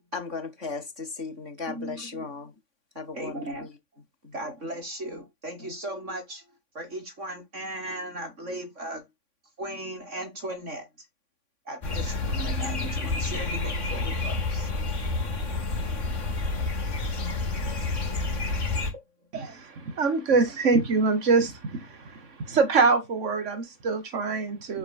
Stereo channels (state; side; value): late; left; 3.5 ms